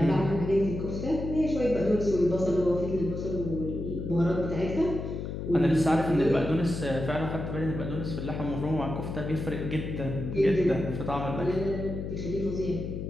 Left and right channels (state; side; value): noise; left; hum, 5 dB below the sound